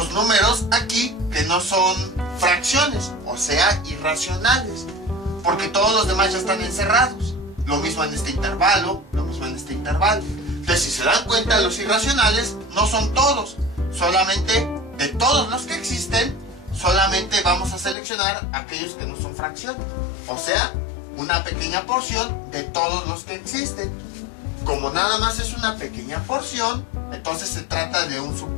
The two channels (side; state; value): right; drops out; at 17.9 s